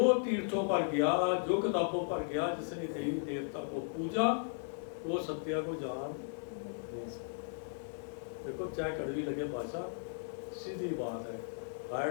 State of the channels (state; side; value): silent; right; 54 dB below the other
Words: तीर्थों पर गया, जो किताबों पर गया, जिसने देवी देवता को पूजा, वो सत्य को जान नहीं सकता। देखो, चाहे कड़वी लगे भाषा, सीधी बात है। हायर